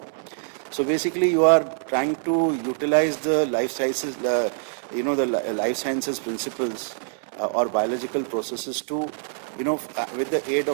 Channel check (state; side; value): silent; left; 59 dB below the other